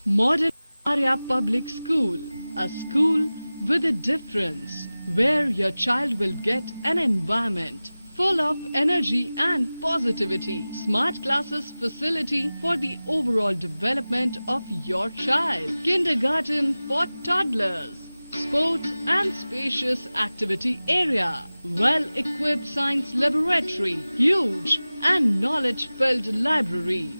Modern Arya Public School, a school with a difference, where your child will get an environment full of energy and positivity. Smart classes facility for the overall development of your child. Kindergarten for toddlers. Sports and spacious activity area. Well-equipped science laboratory. Huge and knowledge-filled library.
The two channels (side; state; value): both; inverted; correlation -0.97